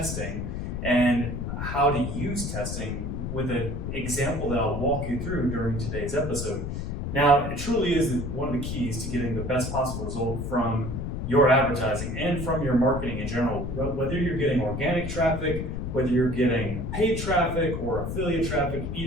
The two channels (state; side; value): noise; left; rumble, 4 dB below the sound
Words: and how to use testing with an example that I'll walk you through during today's episode. Now, it truly is one of the keys to getting the best possible result from your advertising and from your marketing in general. Whether you're getting organic traffic, whether you're getting paid traffic or affiliate traffic,